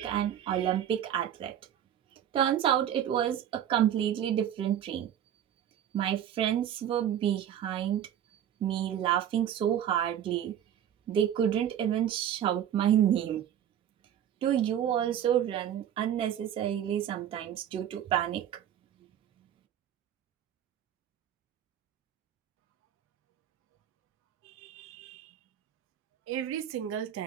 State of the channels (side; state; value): left; quieter; 10.3 dB